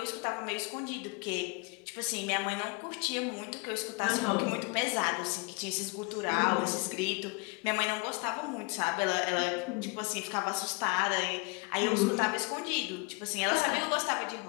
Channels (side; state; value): right; quieter; 29.1 dB